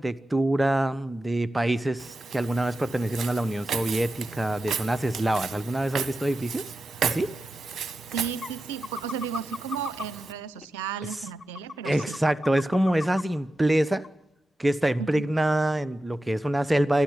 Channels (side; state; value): both; normal; correlation 0.91